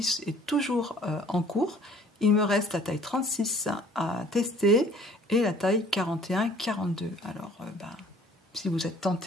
est toujours en cours. Il me reste la taille 36 à tester et la taille 41-42. Alors ben, si vous êtes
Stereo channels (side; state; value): both; normal; correlation 0.54